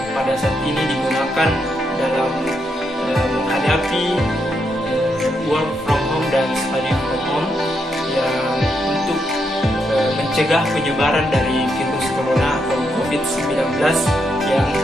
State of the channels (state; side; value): normal; both; correlation 0.80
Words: pada saat ini digunakan dalam menghadapi work from home dan study from home yang untuk mencegah penyebaran dari virus corona atau COVID-19 yang